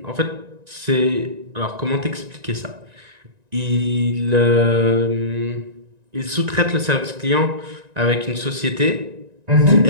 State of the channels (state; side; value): late; left; 1.9 ms